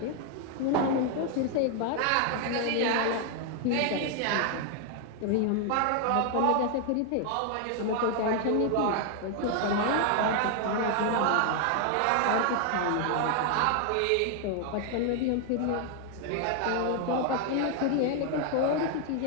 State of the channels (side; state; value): both; different; correlation 0.00